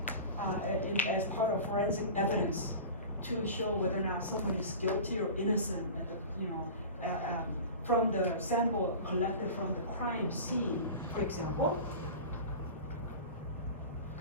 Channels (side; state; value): both; inverted; correlation -0.34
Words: as part of forensic evidence to show whether or not someone is guilty or innocent at the, from the sample collected from the crime scene, for example.